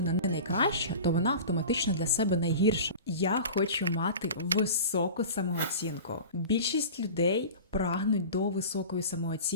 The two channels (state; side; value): inverted; both; correlation -0.34